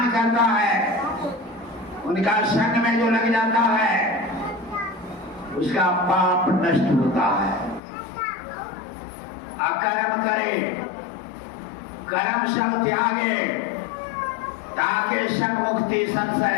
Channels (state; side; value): drops out; right; at 7.8 s